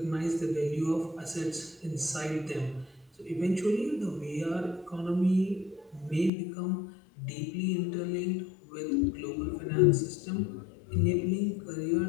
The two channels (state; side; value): drops out; right; at 6.3 s